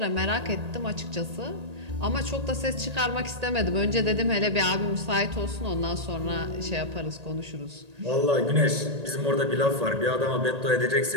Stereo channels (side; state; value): left; late; 1.8 ms